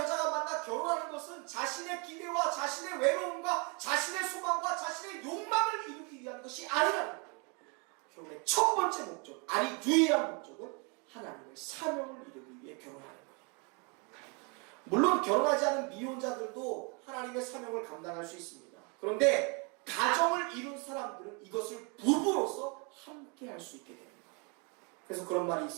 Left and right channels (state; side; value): quieter; left; 33.2 dB